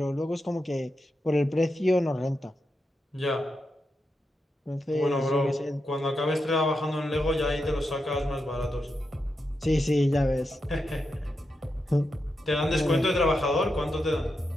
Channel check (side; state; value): both; normal; correlation 0.87